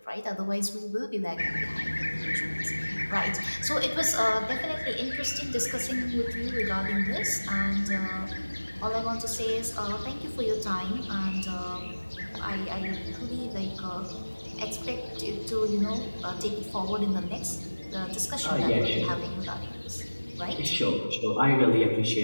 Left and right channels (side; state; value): both; inverted; correlation -1.00